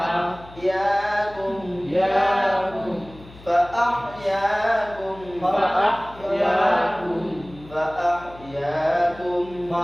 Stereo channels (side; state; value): left; noise; hum, 20 dB below the sound